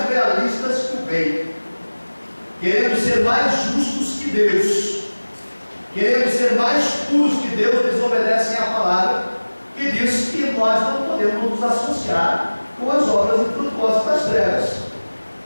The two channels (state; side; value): inverted; both; correlation -1.00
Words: realistas que o bem, querendo ser mais justos que Deus, querendo ser mais puros que Deus, desobedecem à palavra que diz que nós não podemos nos associar com as obras infrutuosas das trevas.